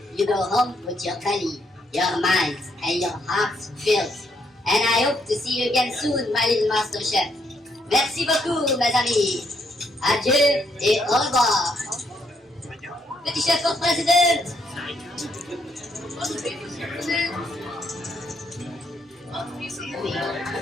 you go home with your belly, your mind, and your heart filled, And I hope to see you again soon, my little master chef. Merci beaucoup, mes amis. Adieu et au revoir. Petit chef for president.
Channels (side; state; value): both; normal; correlation 0.74